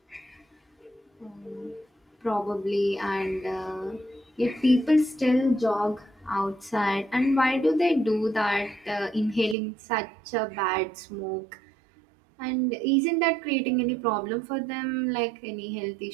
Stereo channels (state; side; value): drops out; left; at 9.6 s